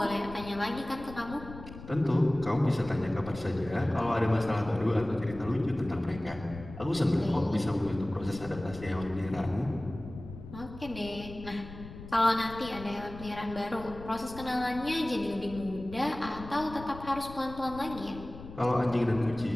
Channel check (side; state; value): left; noise; rumble, 14 dB below the sound